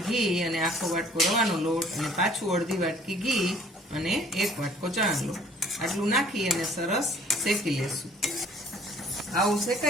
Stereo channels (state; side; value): normal; both; correlation 0.55